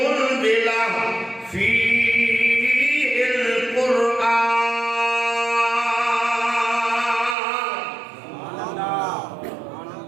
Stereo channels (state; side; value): drops out; left; at 7.4 s